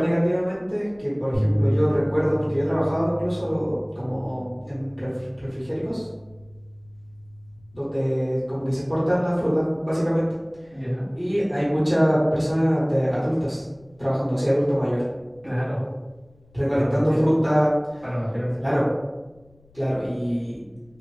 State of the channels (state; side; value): noise; left; rumble, 30 dB below the sound